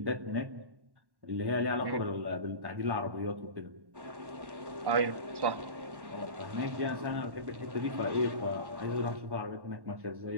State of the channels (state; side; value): late; left; 1.1 ms